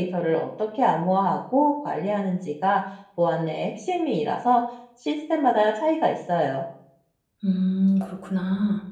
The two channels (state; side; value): identical; both; correlation 1.00